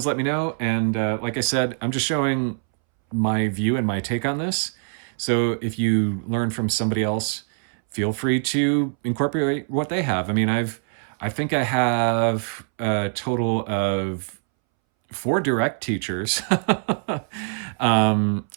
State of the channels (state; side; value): silent; left; 63 dB below the other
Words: let me know. And like I said, I'm just showing my view and my take on this. So if you learn from somebody else, feel free to incorporate what they have. I mean, I think I have a total of 4 direct teachers, and